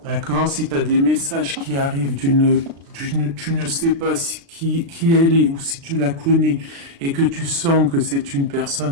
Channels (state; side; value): late; left; 36 ms